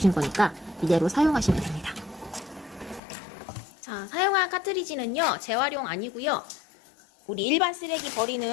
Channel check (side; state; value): right; drops out; at 3.0 s